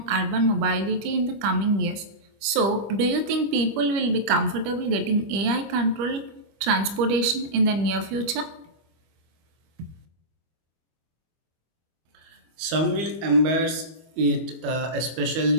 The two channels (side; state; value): left; late; 25 ms